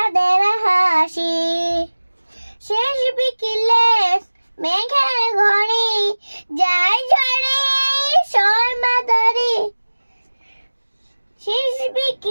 হাসি। শেষ বিকেলে মেঘের ঘড়ি যায় ঝরে শর্মা ধরি। শেষ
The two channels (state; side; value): inverted; both; correlation -1.00